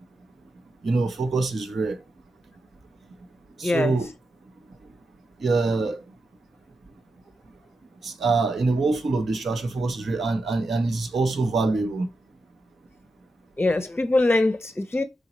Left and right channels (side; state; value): both; normal; correlation 0.87